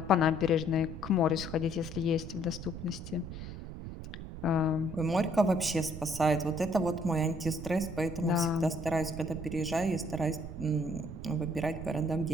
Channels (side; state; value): right; noise; rumble, 9 dB below the sound